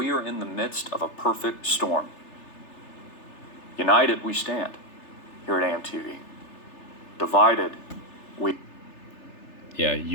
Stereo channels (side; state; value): right; late; 3.3 ms